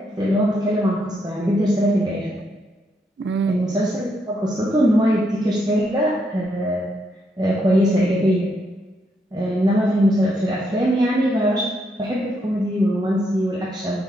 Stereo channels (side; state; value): both; normal; correlation 0.77